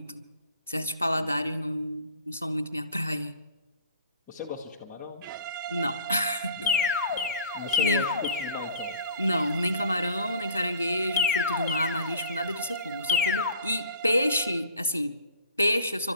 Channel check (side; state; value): both; inverted; correlation -0.48